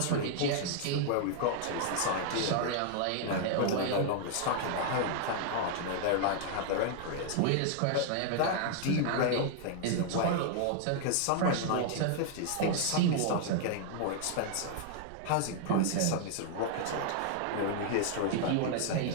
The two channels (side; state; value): both; different; correlation 0.00